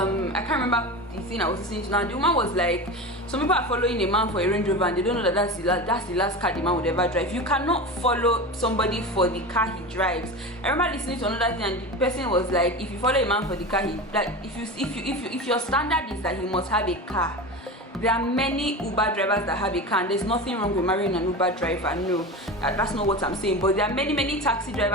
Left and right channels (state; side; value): normal; both; correlation 0.27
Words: can't remember the thing I was listening to now. The woman was like, some people are following a man for a Range Rover and they don't know that that's the last car the man would ever drive. You cannot follow somebody for the car he drives. I remember listening to another thing, and the person was like, if you follow a man for the car if your standard is that he must have a car, there are many Uber drivers that have a car, and there's nothing wrong with marrying an Uber driver. No, that's not what I'm saying. But there are many taxi